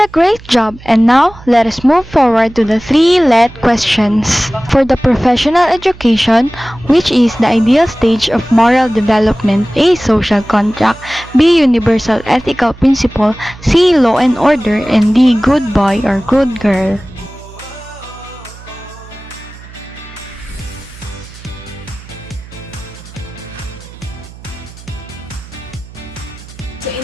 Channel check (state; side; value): noise; right; hum, 19 dB below the sound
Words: a great job, and now let us move forward to the three let questions. For the professional education, which is the ideal stage of moral development, A. Social contract, B. Universal ethical principle, C. Law and order, and D. Good boy or good girl. So in